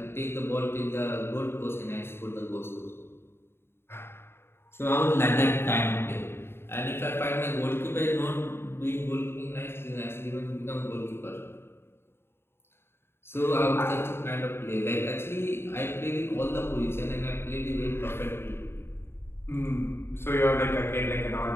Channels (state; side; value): late; right; 0.11 ms